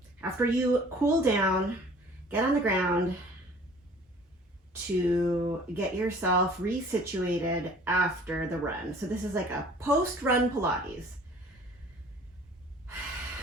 after you cool down, get on the ground to get yourself resituated after the run. So this is like a post-run Pilates.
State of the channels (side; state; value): both; normal; correlation 0.50